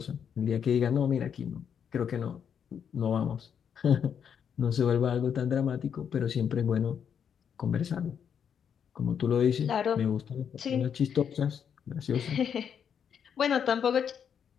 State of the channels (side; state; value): right; quieter; 7.8 dB